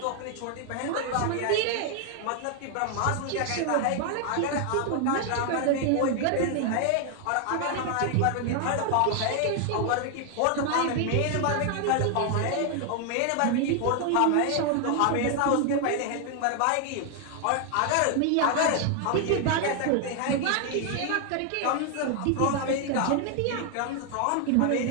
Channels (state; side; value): different; both; correlation 0.00